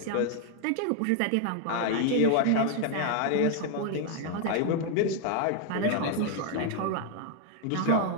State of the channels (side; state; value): both; different; correlation 0.00